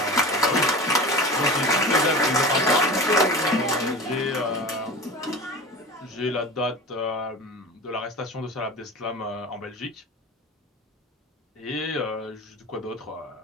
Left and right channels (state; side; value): normal; both; correlation 0.33